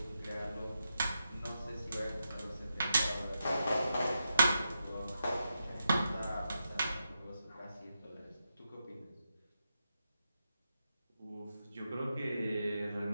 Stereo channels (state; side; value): inverted; both; correlation -0.86